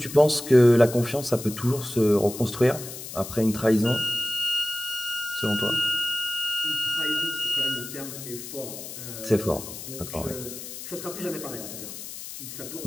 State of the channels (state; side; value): noise; left; hiss, 11 dB below the sound